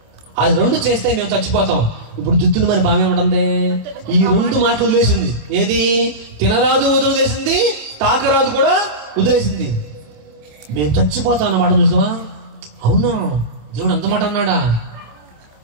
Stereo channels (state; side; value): late; left; 27 ms